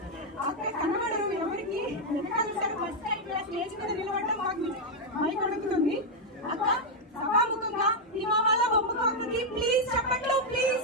అక్కడ కనబడరు ఎవరికి. ఫస్ట్ టైం స్టేజ్ మీద నిలబడడం మాకు మైక్ అడుగుతుంది. అక్క సభాముఖంగా హిమామాల బొమ్మకు ప్లీజ్ చెప్పట్లు,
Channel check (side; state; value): both; normal; correlation 0.00